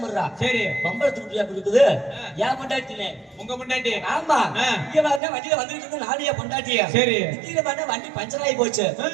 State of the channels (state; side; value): drops out; left; at 5.2 s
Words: இருறா. சரி பம்பள துட்டியா இருக்குது. என் பொண்டாட்டினே. உங்க பொண்டாட்டி? ஆமா. இங்க பாருங்க வண்டியில வந்துகிட்டு இருந்தா நானே பொண்டாட்டியா. சரி திடீர்னு பார்த்தா வண்டி பஞ்சர் ஆகி போச்சு.